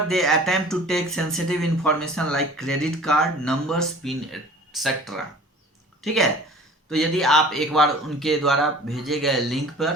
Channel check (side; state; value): both; normal; correlation 0.45